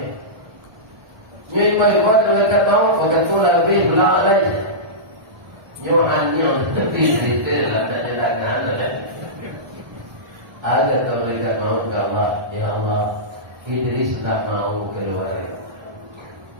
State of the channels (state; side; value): late; left; 1.2 ms